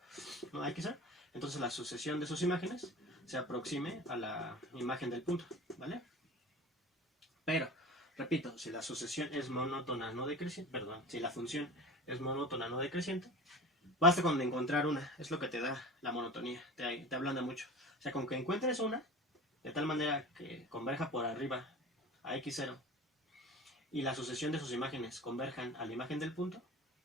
¿no?, a x0, entonces la sucesión de sus imágenes se aproxime a la imagen del punto, ¿vale? Pero, repito, si la sucesión es monótona no decreciente, perdón, si la función es monótona no decreciente, basta con encontrar una, es lo que te da la monotonía, te ablanda mucho. O sea, con que encuentres una, de tal manera que converja por arriba a x0 y la sucesión de sus imágenes converjan a la imagen del punto,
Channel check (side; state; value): both; normal; correlation 0.36